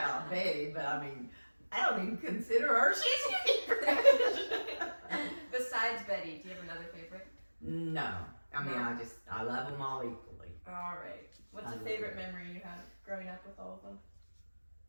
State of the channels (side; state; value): both; inverted; correlation -1.00